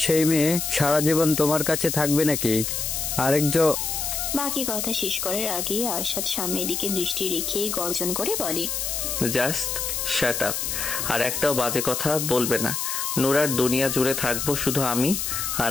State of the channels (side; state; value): left; noise; hiss, 2 dB below the sound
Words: সেই মেয়ে সারা জীবন তোমার কাছে থাকবে নাকি? আরেকজন বাকি কথা শেষ করার আগে আরশাদ সামনের দিকে দৃষ্টি রেখে গর্জন করে বলে, জাস্ট শাট আপ। আর একটাও বাজে কথা বলবে না। নুরার দুনিয়া জুড়ে থাকবো শুধু আমি